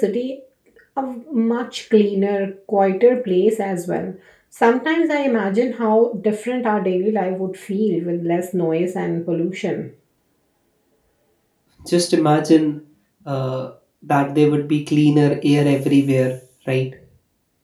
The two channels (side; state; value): both; identical; correlation 1.00